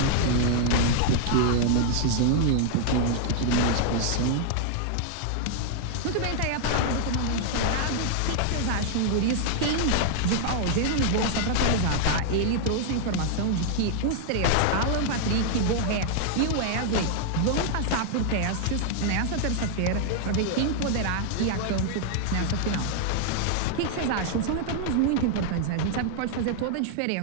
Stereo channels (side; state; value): both; different; correlation 0.00